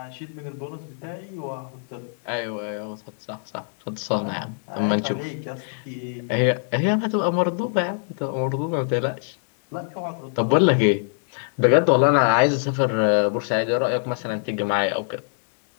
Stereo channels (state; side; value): silent; right; digital silence